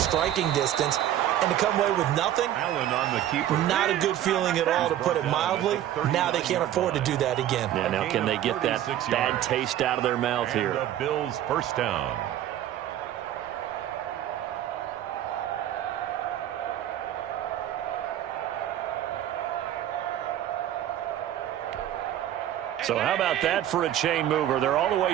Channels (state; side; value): quieter; left; 12.0 dB